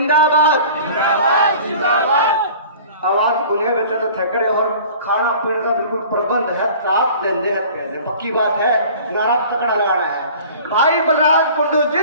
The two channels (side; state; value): both; inverted; correlation -0.45